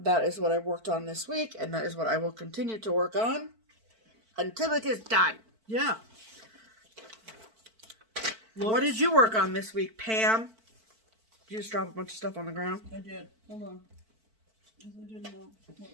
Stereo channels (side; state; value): left; late; 4.5 ms